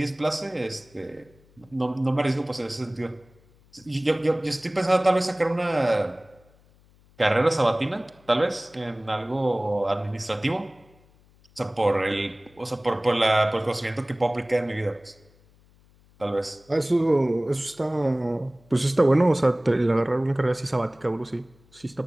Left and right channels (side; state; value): left; noise; hum, 30 dB below the sound